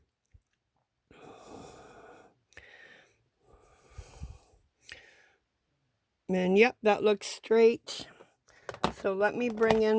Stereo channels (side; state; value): both; identical; correlation 1.00